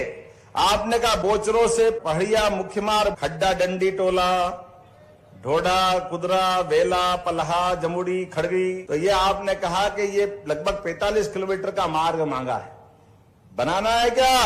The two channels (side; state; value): both; identical; correlation 1.00